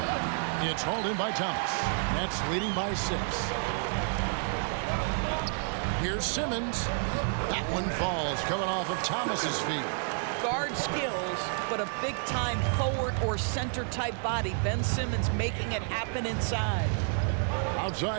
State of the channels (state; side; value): silent; left; 57 dB below the other